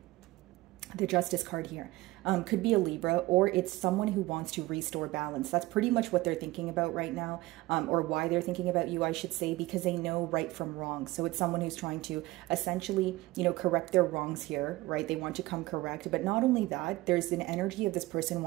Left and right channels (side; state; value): left; quieter; 19.3 dB